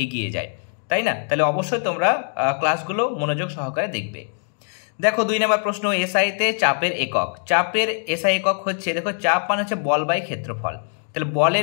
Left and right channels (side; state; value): right; silent; 64 dB below the other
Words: এগিয়ে যায়, তাই না? তাহলে অবশ্যই তোমরা ক্লাসগুলো মনোযোগ সহকারে দেখবে। দেখো 2 নম্বর প্রশ্ন, এসআইতে চাপের একক। চাপের এসআই একক হচ্ছে, দেখো চাপ মানে হচ্ছে বল বাই ক্ষেত্রফল, তাহলে বলের